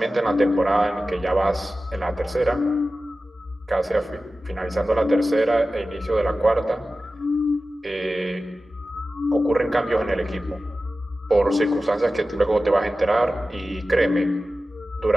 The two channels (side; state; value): both; normal; correlation 0.95